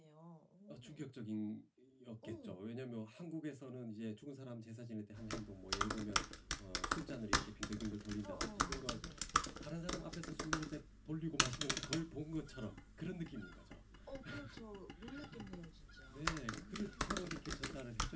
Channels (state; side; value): identical; both; correlation 1.00